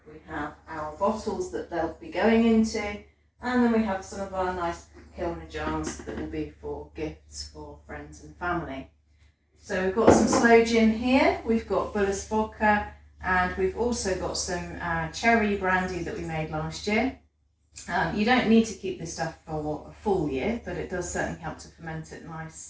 we have our bottles that they'll be going into, and then we have some of our nice Kilner jars that will be for gifts for friends and family. So we've got some sloe gin here, we've got Buller's vodka, and we've also got some cherry brandy that we made last year. You don't need to keep this stuff for a full year, but it does certainly help to ferment it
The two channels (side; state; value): both; identical; correlation 1.00